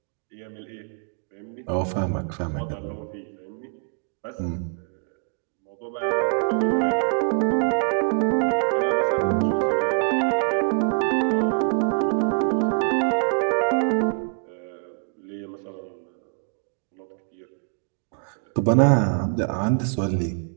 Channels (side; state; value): left; silent; 56 dB below the other